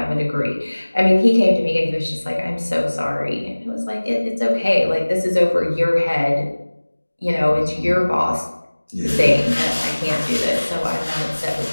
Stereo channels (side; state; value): both; inverted; correlation -1.00